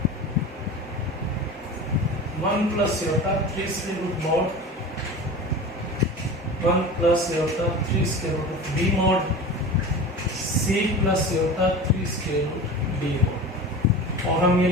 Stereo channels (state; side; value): normal; both; correlation 0.33